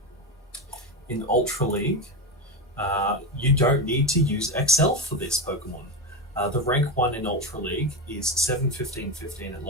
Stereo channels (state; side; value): normal; both; correlation 0.15